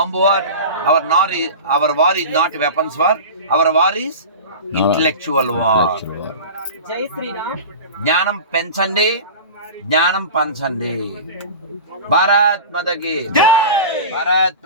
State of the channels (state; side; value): inverted; both; correlation -0.32